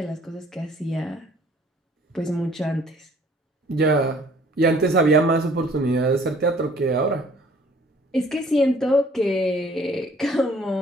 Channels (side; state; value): both; normal; correlation 0.57